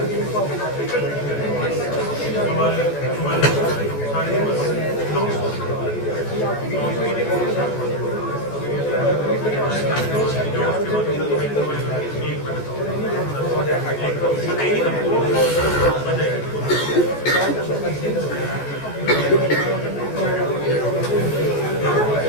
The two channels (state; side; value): late; right; 14 ms